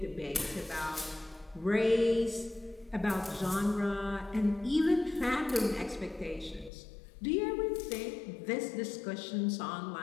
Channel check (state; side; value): drops out; right; at 6.7 s